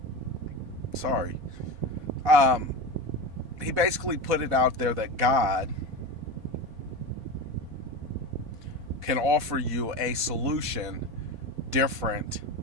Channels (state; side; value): late; left; 4.2 ms